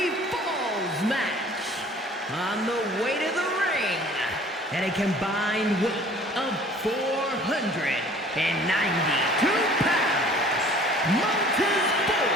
falls match. On the way to the ring, at a combined weight of 492 pounds, Montez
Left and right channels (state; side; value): normal; both; correlation 0.51